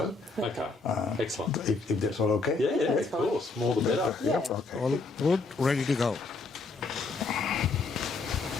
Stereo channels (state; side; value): quieter; right; 3.8 dB